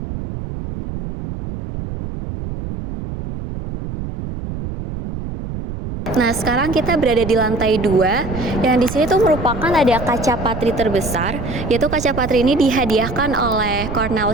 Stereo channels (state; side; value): noise; right; rumble, 7 dB below the sound